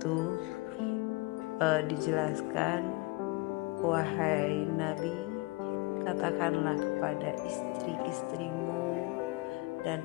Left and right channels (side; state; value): right; quieter; 23.8 dB